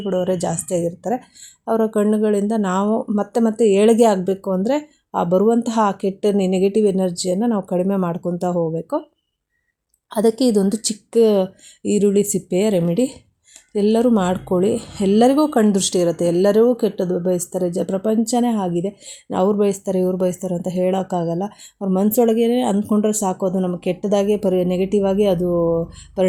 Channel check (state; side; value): identical; both; correlation 1.00